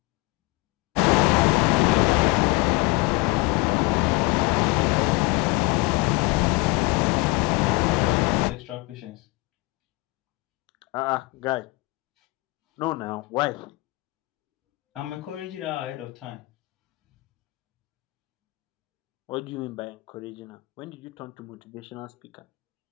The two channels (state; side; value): quieter; right; 23.1 dB